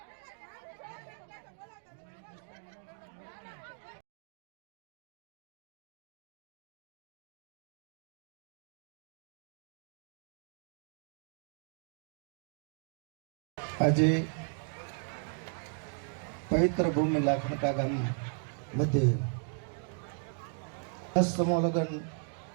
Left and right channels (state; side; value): silent; left; 53 dB below the other